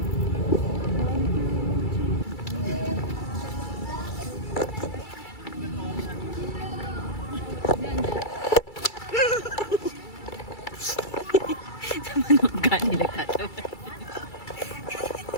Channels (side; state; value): right; late; 2.3 ms